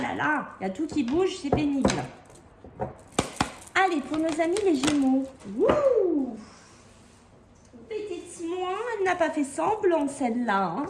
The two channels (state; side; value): identical; both; correlation 1.00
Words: là, il y a tout qui bouge, c'est pénible. Allez, pour nos amis les Gémeaux. Wouh! Petite moi, elle n'a pas fait semblant celle-là. Hein.